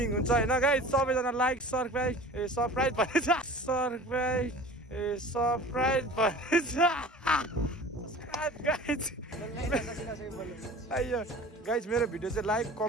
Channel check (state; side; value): normal; both; correlation 0.41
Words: हुन्छ होइन गाइज सबैजना लाइक सब्सक्राइब भनेछ सब्सक्राइब भनेछ गाइज मेरो भिडियो चाहिँ लाइक